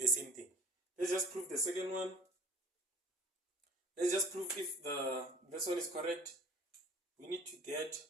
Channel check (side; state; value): both; normal; correlation 0.47